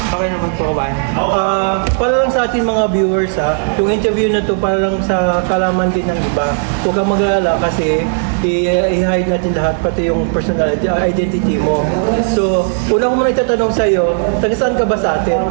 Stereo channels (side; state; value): left; silent; digital silence